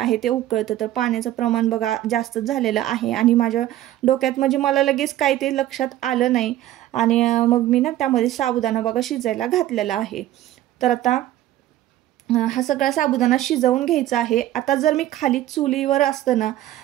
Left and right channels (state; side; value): quieter; left; 13.8 dB